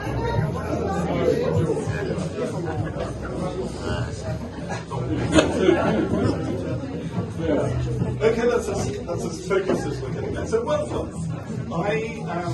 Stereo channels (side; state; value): both; identical; correlation 1.00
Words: Okay, that's as focused as we're getting there. So, welcome. I